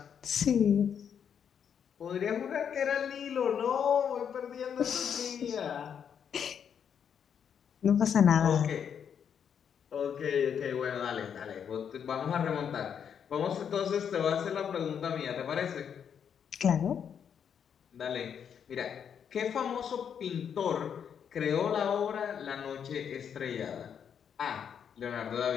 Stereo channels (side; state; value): right; quieter; 7.9 dB